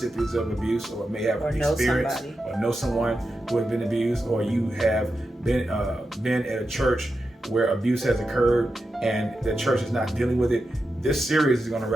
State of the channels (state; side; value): normal; both; correlation 0.89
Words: of abuse, or may have experienced or know someone who has been abused, or you have been at a church where abuse has occurred and the church is not dealing with it. This series is going to